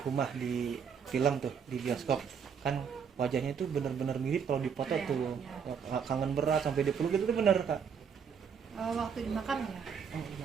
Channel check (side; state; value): left; quieter; 6.9 dB